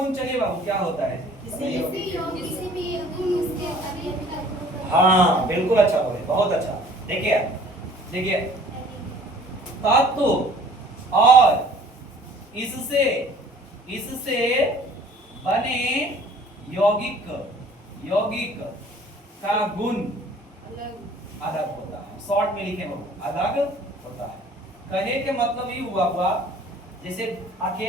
चलिए बाबू क्या होता है? हाँ बिल्कुल अच्छा बोले, बहुत अच्छा। देखिए देखिए, तत्व और इससे बने यौगिक का गुण अलग होता है। शॉर्ट में लिखे बाबू, अलग होता है। कहे के मतलब ये हुआ जैसे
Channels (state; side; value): normal; both; correlation 0.52